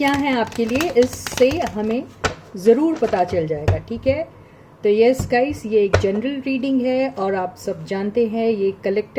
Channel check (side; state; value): both; identical; correlation 1.00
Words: हैं आपके लिए, इससे हमें ज़रूर पता चल जाएगा. ठीक है. तो यस गाइस, ये एक जनरल रीडिंग है और आप सब जानते हैं ये